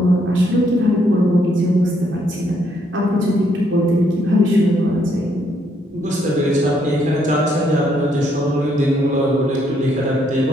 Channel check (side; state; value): both; normal; correlation 0.72